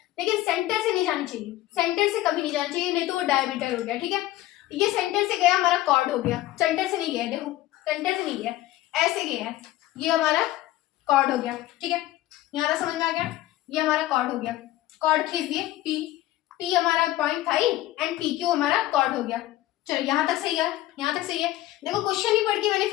लेकिन सेंटर से नहीं जानी चाहिए, सेंटर से कभी नहीं जाना चाहिए, नहीं तो वो डायमीटर हो गया, ठीक है। ये सेंटर से गया हमारा कॉर्ड हो गया, सेंटर से नहीं गया, देखो सेंटर से नहीं गया, ऐसे गया है, ये हमारा कॉर्ड हो गया, ठीक है। यहाँ तक समझ में आ गया, ये हमारा कॉर्ड हो गया, कॉर्ड खींच दिए P P हमारा पॉइंट था ही एंड PQ हमारा कॉर्ड हो गया। चलो यहाँ तक सही है, यहाँ तक सही है। देखो क्वेश्चन ही पढ़ के मैंने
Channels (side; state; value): right; quieter; 15.6 dB